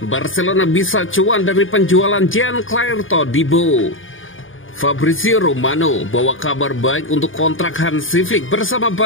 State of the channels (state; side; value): late; right; 0.58 ms